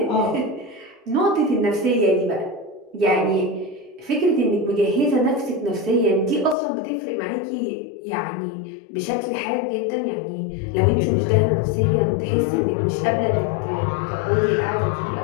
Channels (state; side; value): drops out; right; at 6.6 s